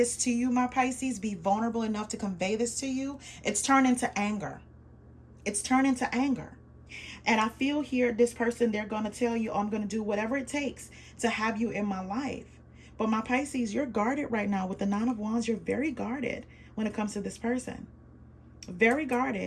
to you, my Pisces, be vulnerable enough to convey this to you, it's turned into anger. It's turned into anger. And I feel here, this person, they're going to tell you, oh, I'm going to do whatever it takes to have you in my life. But my Pisces, you're guarded right now with the Nine of Wands. You're very guarded when it comes to this person. Very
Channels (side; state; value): both; identical; correlation 1.00